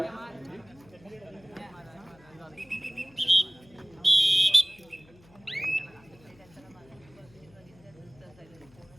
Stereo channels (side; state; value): left; noise; hum, 27 dB below the sound